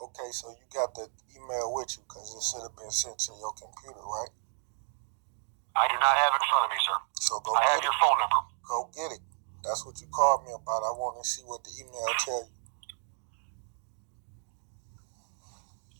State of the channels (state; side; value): silent; left; digital silence